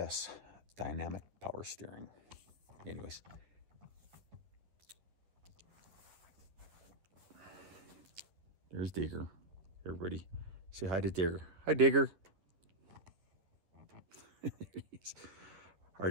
dynamic power steering. Anyways, there's Digger. Everybody say hi to Digger. Hi, Digger. All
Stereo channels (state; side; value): late; left; 10 ms